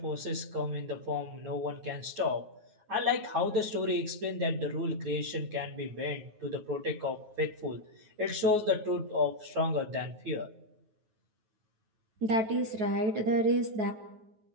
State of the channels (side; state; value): left; late; 9.5 ms